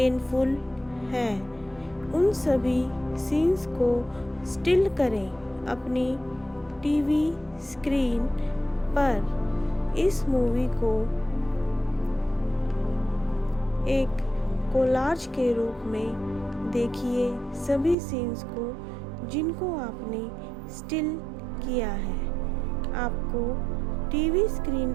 हैं। उन सभी सीन्स को स्टिल करें अपनी टीवी स्क्रीन पर। इस मूवी को एक कोलाज के रूप में देखिए सभी सीन्स को जिनको आपने स्टिल किया है। आपको टीवी स्क्रीन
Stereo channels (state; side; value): drops out; left; at 17.9 s